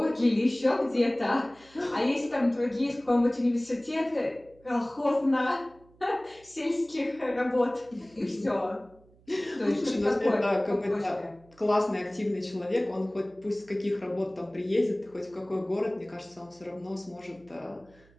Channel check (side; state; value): right; noise; hum, 28 dB below the sound